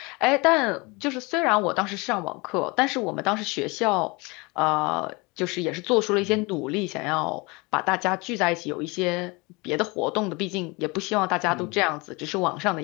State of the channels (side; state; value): right; quieter; 26.5 dB